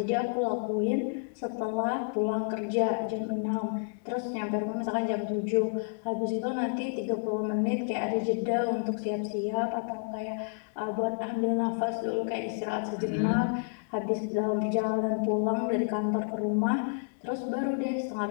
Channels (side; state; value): right; silent; digital silence